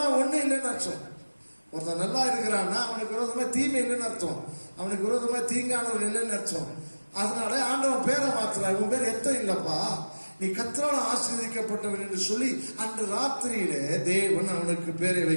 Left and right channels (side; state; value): both; inverted; correlation -1.00